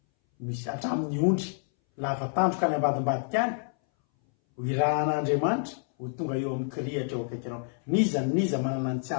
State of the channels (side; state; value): right; silent; 59 dB below the other